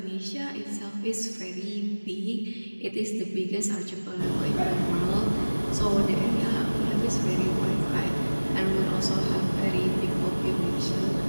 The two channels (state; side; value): inverted; both; correlation -1.00